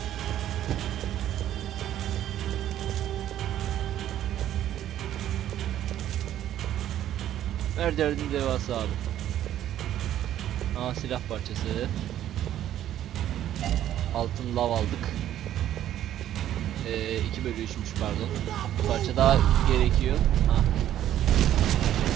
Her derdin devası abi. Aa, silah parçası. Altın lav aldık. 2/3'müş pardon. Bir parça daha gerekiyor. Ha.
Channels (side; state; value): left; quieter; 11.8 dB